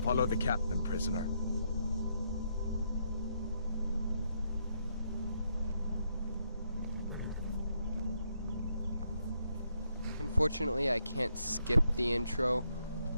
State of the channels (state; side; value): inverted; both; correlation -0.77